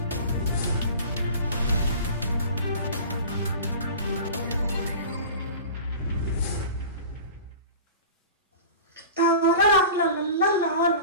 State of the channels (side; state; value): both; inverted; correlation -0.37